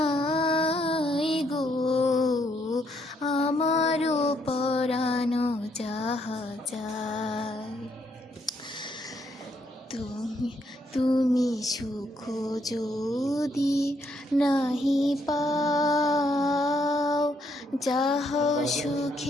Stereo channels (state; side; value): normal; both; correlation 0.73